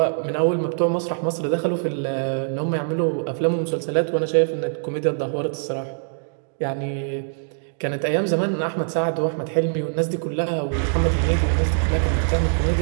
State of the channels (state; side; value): silent; left; digital silence